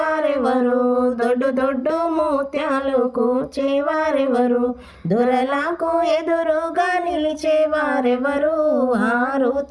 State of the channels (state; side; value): identical; both; correlation 1.00